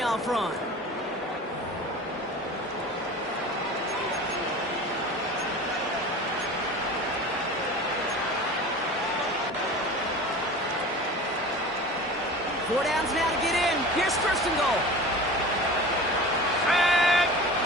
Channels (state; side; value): normal; both; correlation 0.36